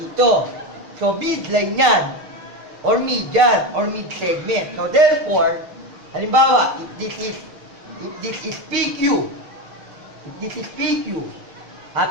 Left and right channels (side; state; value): left; late; 6.6 ms